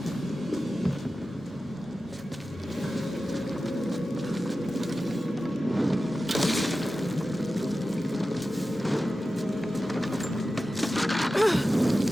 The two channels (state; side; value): normal; both; correlation 0.94